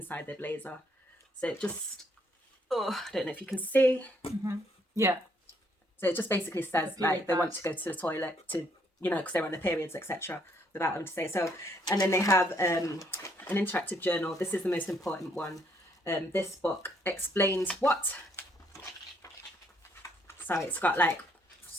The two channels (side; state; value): both; normal; correlation 0.69